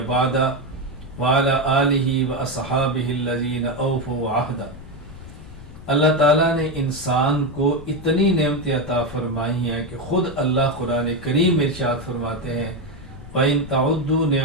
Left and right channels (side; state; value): left; noise; rumble, 17 dB below the sound